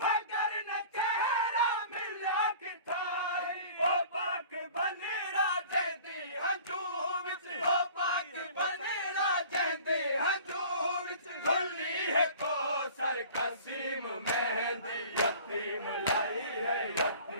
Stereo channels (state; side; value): inverted; both; correlation -0.45